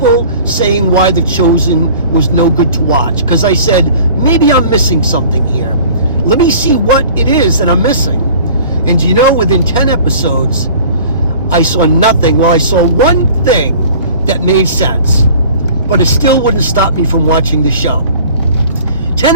saying why The Chosen was no good to watch. Because I said, maybe I'm missing something here. Let me see what it is that I'm missing. And you know, within 10 episodes, I saw nothing. Well, I saw one thing that made sense, but it still wouldn't stop me from watching the show. 10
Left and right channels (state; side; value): inverted; both; correlation -0.47